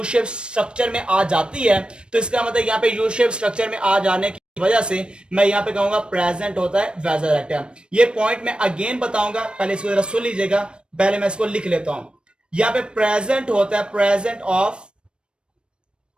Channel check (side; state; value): left; late; 0.055 ms